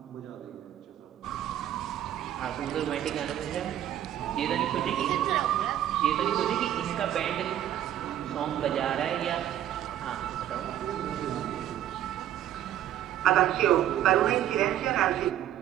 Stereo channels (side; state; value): left; quieter; 11.6 dB